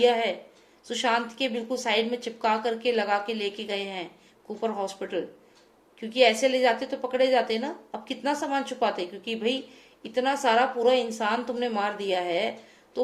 है, सुशांत के बिल्कुल साइड में चिपका करके लगा के लेके गए हैं कूपर हॉस्पिटल। क्योंकि ऐसे ले जाते तो पकड़े जाते ना। अब कितना सामान छुपाते, क्योंकि भाई इतना सारा पूरा इंसान तुमने मार दिया है,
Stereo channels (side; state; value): both; identical; correlation 1.00